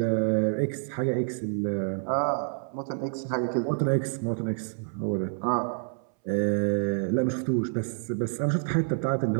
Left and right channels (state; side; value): silent; left; 59 dB below the other